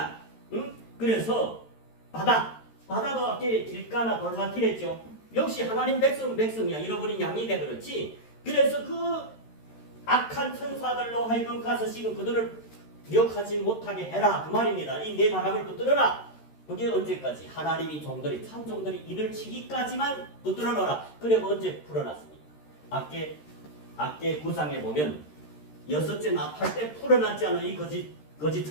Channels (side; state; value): right; late; 13 ms